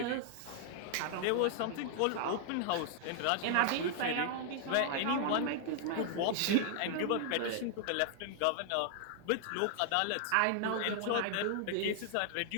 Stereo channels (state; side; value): different; both; correlation 0.00